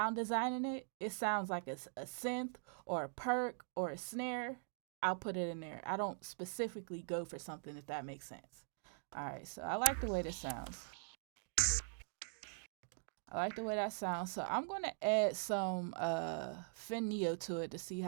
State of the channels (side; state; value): left; silent; digital silence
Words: designing it, it sounds like a synth or a perk or a snare, I'll put it in there. I don't specifically go for something, if that makes sense. All right, so I like the way this sounds. I like the way that sounds. So I'm going to add some Neo to it to see